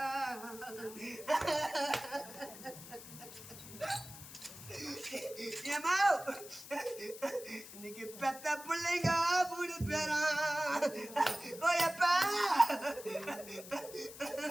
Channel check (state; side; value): noise; left; hiss, 14 dB below the sound